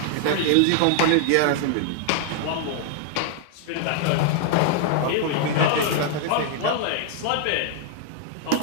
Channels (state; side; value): different; both; correlation 0.00